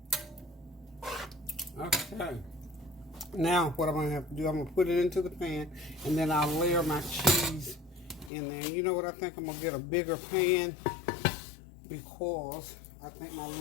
Okay. Now, what I'm going to have to do, I'm going to put it into the pan, and then I'll layer my cheese in there. You know what? I think I'm going to get a bigger pan because I think my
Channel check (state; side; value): drops out; right; at 8.3 s